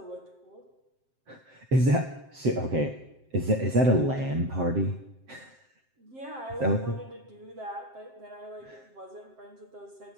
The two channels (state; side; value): late; left; 7.6 ms